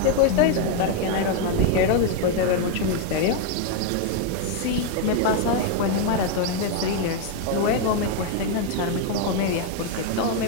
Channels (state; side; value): different; both; correlation 0.01